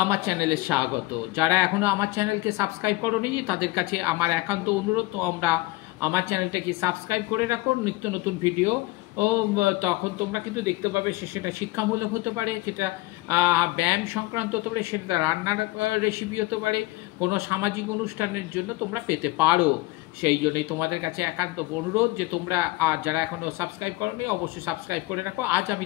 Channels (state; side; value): quieter; right; 20.1 dB